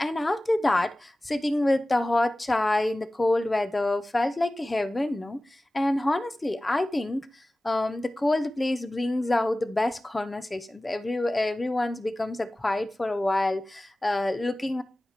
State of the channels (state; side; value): normal; both; correlation 0.97